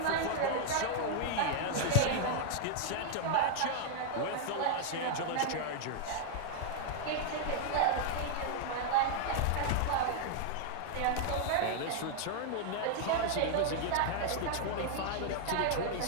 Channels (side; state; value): both; different; correlation 0.00